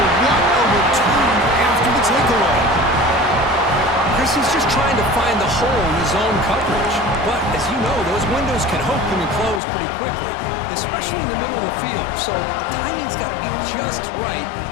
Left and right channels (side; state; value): right; drops out; at 9.6 s